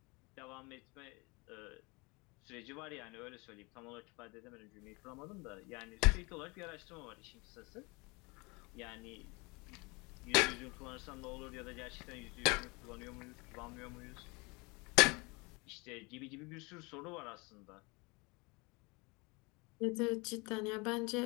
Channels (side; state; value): right; quieter; 27.5 dB